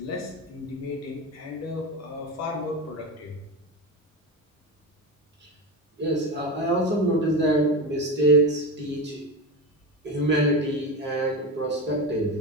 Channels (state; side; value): normal; both; correlation 0.20